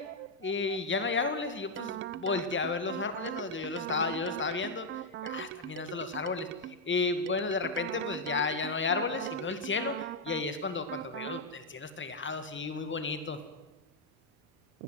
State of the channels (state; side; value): normal; both; correlation -0.01